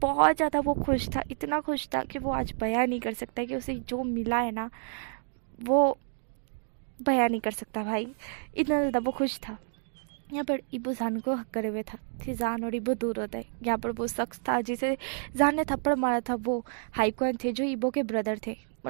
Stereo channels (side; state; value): left; silent; digital silence